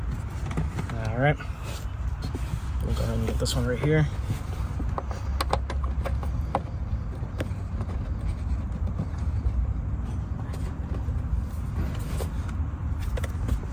All right, we'll go ahead and get this one right here.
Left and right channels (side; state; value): both; identical; correlation 1.00